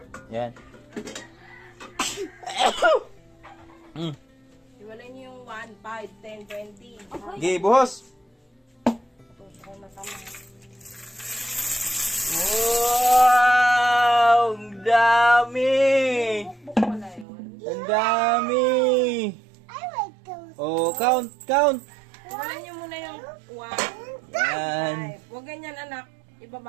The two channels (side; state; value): left; drops out; at 17.2 s